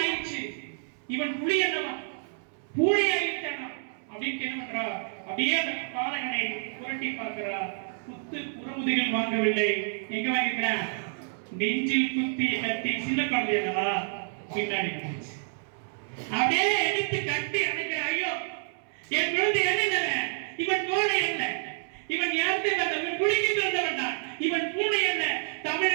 இவன் புலி அல்லவா, பூனை ஆயிட்டானா அப்படின்னு என்ன பண்றா, அப்படியே அந்த பாலகனை புரட்டி பார்க்கிறா. குத்து புறமுதுகில் வாங்கவில்லை, எங்க வாங்கிக்கிறேன், நெஞ்சில் குத்திய கத்தி. சின்ன குழந்தை அல்லவா, பின்னாடி அப்படியே எடுத்து கட்டி அணைக்கிற. ஐயோ என் குழந்தை என்ன, இவன் கோழை அல்ல, இவன் யாருக்கு வந்தவன், புலிக்கு பிறந்தவன் தான். இவன் பூனை அல்ல,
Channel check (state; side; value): silent; left; 59 dB below the other